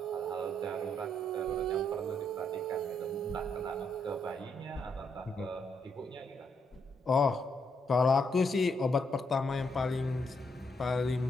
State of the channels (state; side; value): normal; both; correlation 0.76